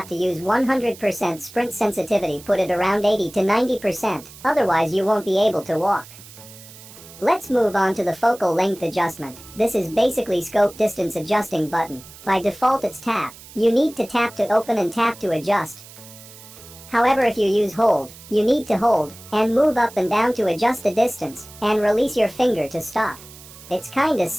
to use 100% sprint sensitivity, put it around 80 to 90%, otherwise you won't be able to walk. Let's move on to the focal length adjustment. This is basically scope distance adjusting button. By default it's tap. You need to tap to open and tap to adjust. However, if you use hold, you need to hold and move up and down to adjust the distance, and release your finger to stop. It's kinda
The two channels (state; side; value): noise; right; hiss, 19 dB below the sound